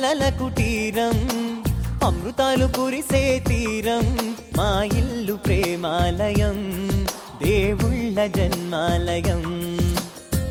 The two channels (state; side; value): identical; both; correlation 1.00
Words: కుటీరం, అమృతాలు కురిసే తీరం, మా ఇల్లు ప్రేమాలయం, దేవుళ్ళ జన్మాలయం.